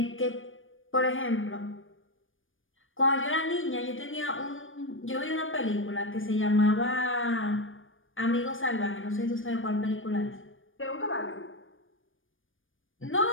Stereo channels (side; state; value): right; late; 0.58 ms